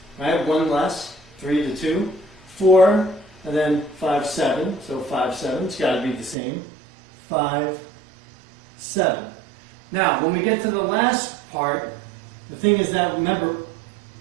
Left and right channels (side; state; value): left; drops out; at 6.4 s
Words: right? 1 less, 3 to 2, 4, and then 5, 7. So 5, 7, it's got to be the same. 5, 7. Now, when we get to the last part, the thing is that, remember,